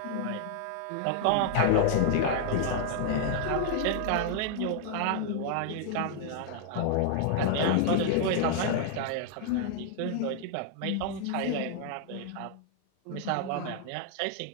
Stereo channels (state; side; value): different; both; correlation 0.00